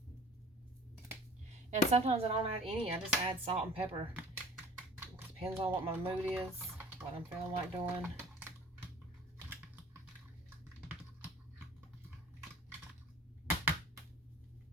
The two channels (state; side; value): normal; both; correlation 0.47